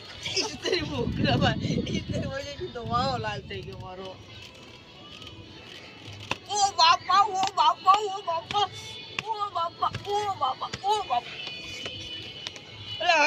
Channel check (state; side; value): identical; both; correlation 1.00